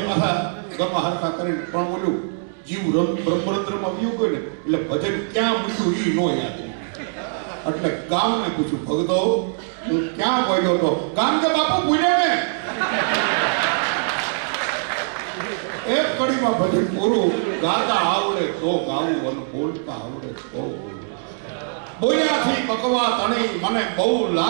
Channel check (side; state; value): left; silent; digital silence